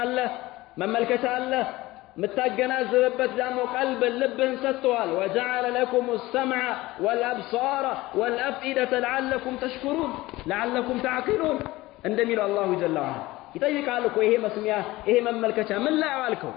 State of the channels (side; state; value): right; quieter; 18.9 dB